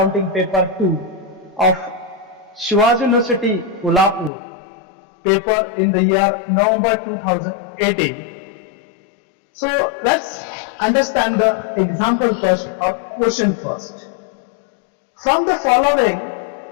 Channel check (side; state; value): right; drops out; at 4.3 s